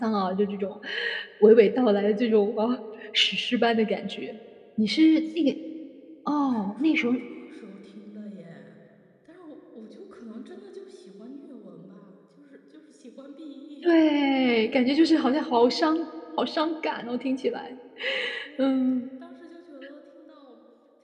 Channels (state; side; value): identical; both; correlation 1.00